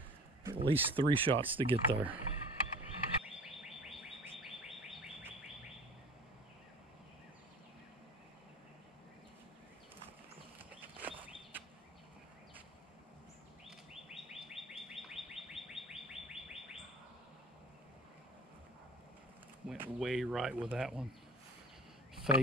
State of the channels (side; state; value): both; normal; correlation 0.42